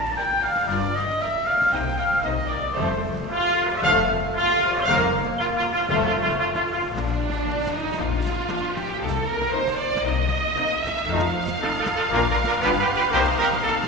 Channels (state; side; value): normal; both; correlation 0.38